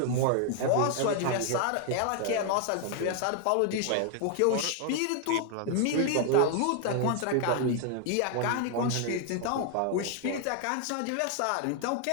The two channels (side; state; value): both; different; correlation 0.00